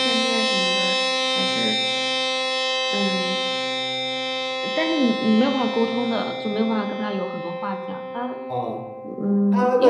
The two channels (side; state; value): both; identical; correlation 1.00